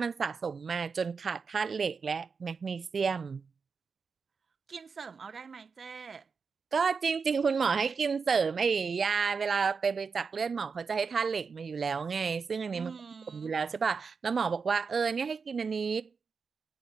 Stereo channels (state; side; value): quieter; left; 5.3 dB